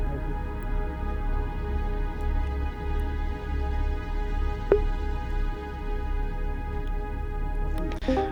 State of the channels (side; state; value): both; identical; correlation 1.00